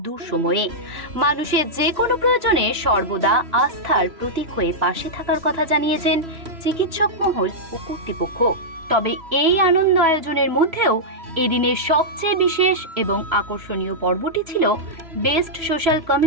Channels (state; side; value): late; left; 3.0 ms